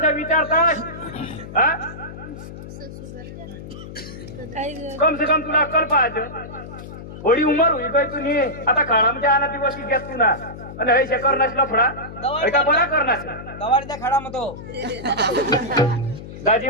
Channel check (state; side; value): noise; left; hum, 13 dB below the sound